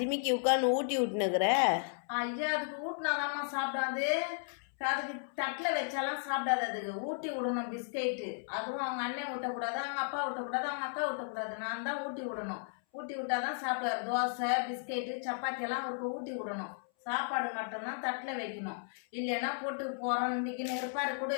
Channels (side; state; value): right; silent; 55 dB below the other